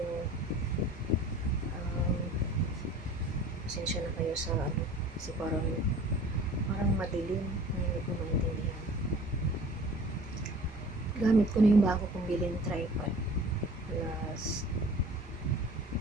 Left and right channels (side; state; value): both; normal; correlation 0.46